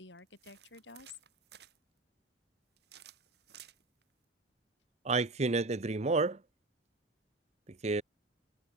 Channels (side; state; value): left; quieter; 3.1 dB